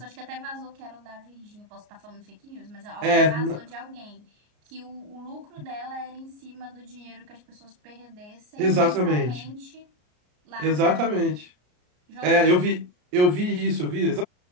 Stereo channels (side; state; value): left; late; 33 ms